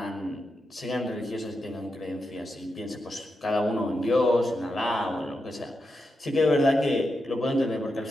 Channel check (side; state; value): both; normal; correlation 0.87